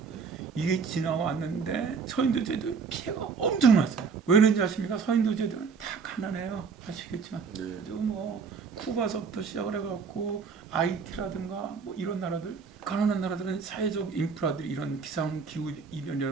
이게 지나왔는데 서인도제들 피해가 엄청났어요. 왜 그런지 아십니까? 서인도제들은 다 가난해요. 아시겠지만 네. 아주 뭐 쿠바서부터 시작을 해갖고 아이티라든가 뭐 이런 나라들 가난한 나라들은 사회적 인프라들이 이런 기상 기후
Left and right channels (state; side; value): quieter; left; 5.5 dB